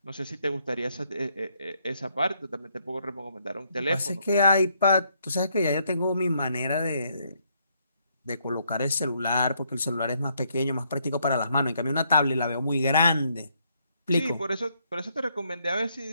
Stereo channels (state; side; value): inverted; both; correlation -0.73